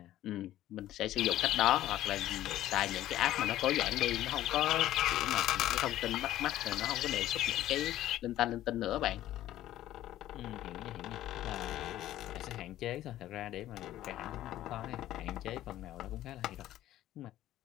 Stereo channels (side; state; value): right; quieter; 13.7 dB